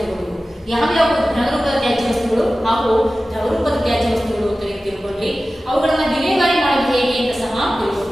ಯಾವ್ಯಾವ ಘನರೂಪದ ತ್ಯಾಜ್ಯ ವಸ್ತುಗಳು ಹಾಗೂ ದ್ರವರೂಪದ ತ್ಯಾಜ್ಯ ವಸ್ತುಗಳು ಅಂತ ತಿಳ್ಕೊಂಡ್ರಿ. ಅವುಗಳನ್ನ ವಿಲೇವಾರಿ ಮಾಡೋದು ಹೇಗೆ ಅಂತ ಸಹ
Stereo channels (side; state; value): both; normal; correlation 0.95